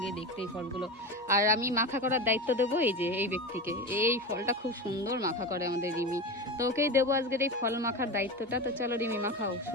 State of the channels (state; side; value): normal; both; correlation 0.24